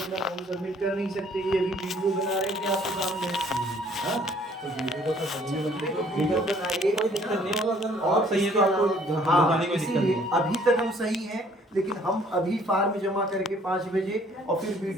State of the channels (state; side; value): normal; both; correlation 0.59